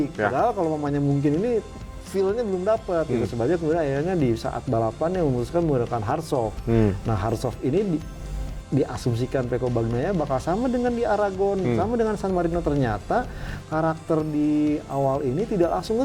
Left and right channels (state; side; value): identical; both; correlation 1.00